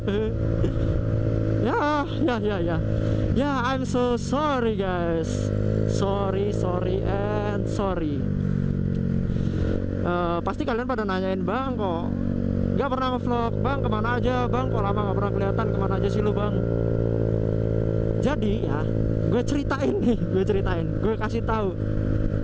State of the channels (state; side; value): identical; both; correlation 1.00